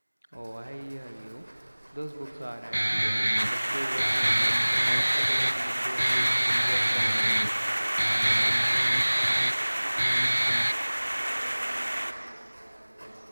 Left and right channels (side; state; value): both; inverted; correlation -1.00